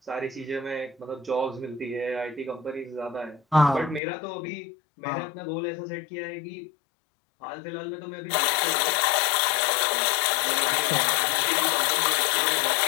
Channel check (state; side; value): drops out; right; at 4.0 s